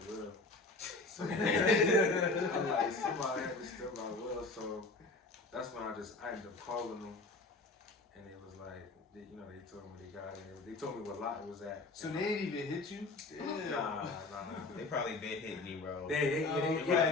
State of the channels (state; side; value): quieter; right; 3.3 dB